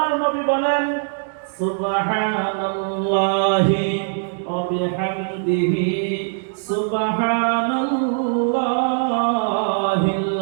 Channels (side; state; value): left; silent; digital silence